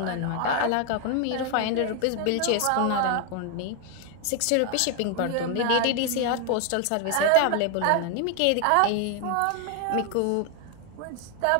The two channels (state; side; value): different; both; correlation 0.01